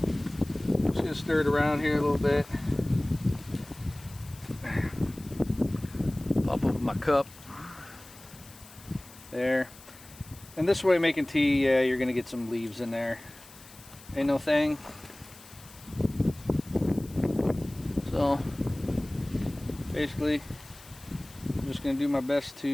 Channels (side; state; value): left; noise; hiss, 21 dB below the sound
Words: I'm just gonna stir it around here a little bit. Pop open my cup. There. And this way making tea, you're gonna get some leaves in there. Ain't no thing. So basically, I'm just gonna do my best